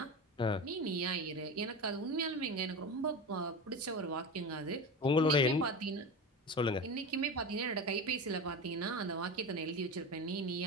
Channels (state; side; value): normal; both; correlation 0.25